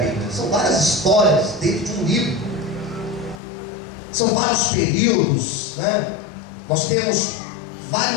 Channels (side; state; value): right; drops out; at 3.4 s